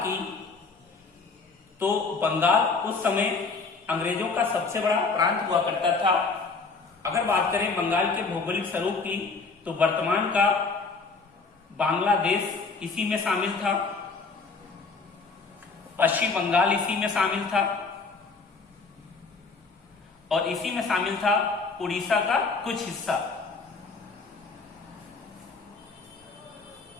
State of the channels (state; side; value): quieter; right; 4.3 dB